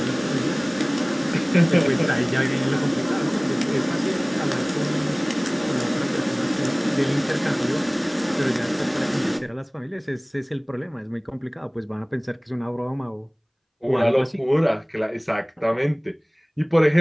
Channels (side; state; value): both; identical; correlation 1.00